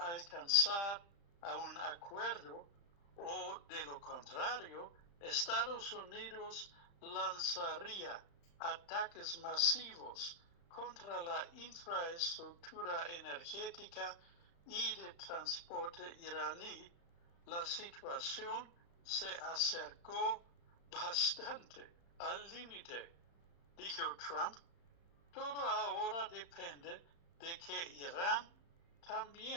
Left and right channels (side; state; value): right; late; 35 ms